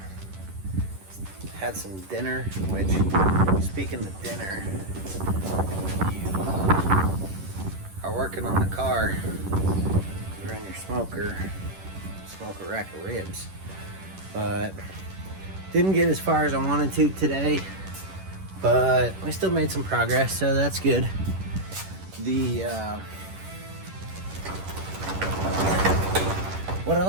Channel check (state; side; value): late; left; 11 ms